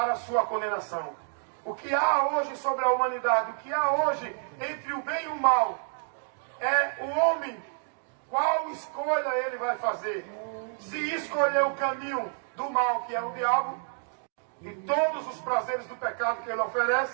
a sua condenação. O que há hoje sobre a humanidade, o que há hoje entre o bem e o mal, é o homem, qual escolha ele vai fazer. Se escolher o caminho do mal, que é o diabo, e todos os prazeres do pecado que ele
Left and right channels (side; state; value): left; silent; 59 dB below the other